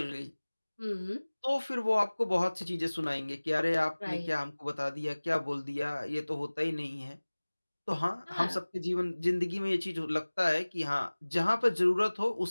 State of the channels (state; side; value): inverted; both; correlation -1.00